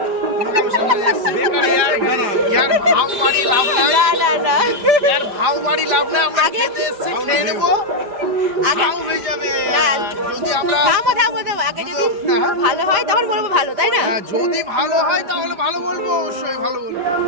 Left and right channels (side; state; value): left; late; 5.0 ms